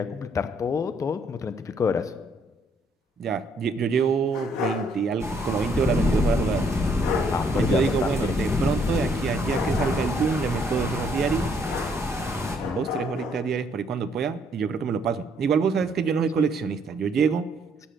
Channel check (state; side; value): normal; both; correlation 0.68